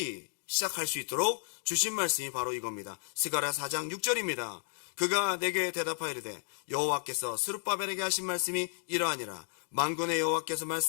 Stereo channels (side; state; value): right; silent; 56 dB below the other